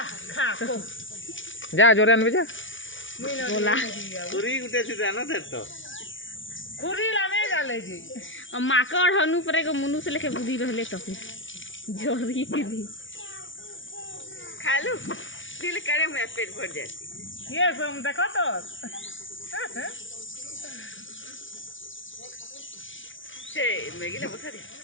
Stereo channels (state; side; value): late; right; 0.56 ms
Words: खा को जा जोरे अनबे जा गोला पूरी गुटे से जाना से तो खुरी लाने जाले जी माकड़ हनु परे को मुनु से लेके बुद्धि रहले तो फिर जोरी के दी खा लो दिल करे मैं पेट भर जाती ये सब देखो तो छे मैगी ले बता दे